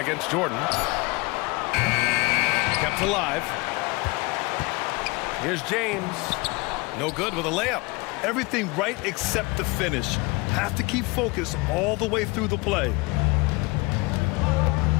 against Jordan. Kept alive. Here's James. No good with a layup. Everything right except the finish. Have to keep focused all the way through the play.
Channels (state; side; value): quieter; right; 25.7 dB